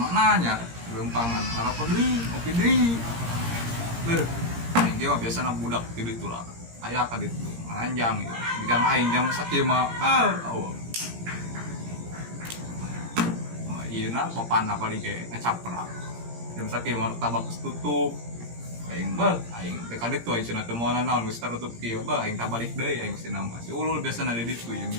lempangan harap deui ngopi deui beuh aing ge biasa budak di ditu lah aya ka ditu ngaranjang gitu bigang aing jam sakieu mah ieu na papanna paling ge ngacaprak jam sakieu mah tabak tutup aing aing teh ka ditu aing cenah teu moal naon geus tertutup kieu aing tabalik deui aing cenah mah si ulul biasana di ditu yang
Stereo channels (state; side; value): late; left; 17 ms